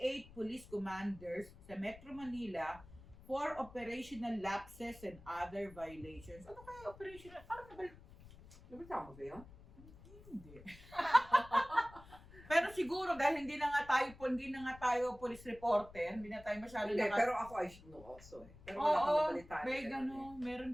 police commanders sa Metro Manila for operational lapses and other violations. Ano kaya operational? Parang Nabitama ba yun? Hindi. Pero siguro dahil hindi na nga tayo police reporter, hindi na tayo masyado pero ako I should know also eh. Pero wala akong nabalitaan. Meron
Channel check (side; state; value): left; noise; rumble, 20 dB below the sound